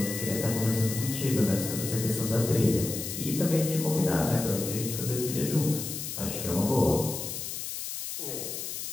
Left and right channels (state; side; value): noise; left; hiss, 6 dB below the sound